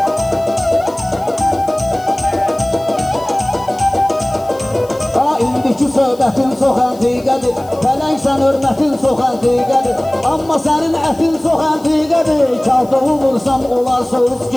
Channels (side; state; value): left; noise; hiss, 24 dB below the sound